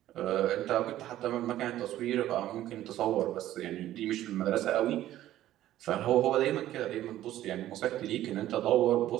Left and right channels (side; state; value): left; quieter; 13.6 dB